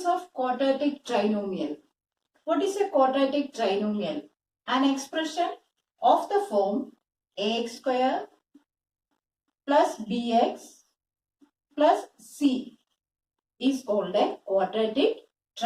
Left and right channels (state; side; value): identical; both; correlation 1.00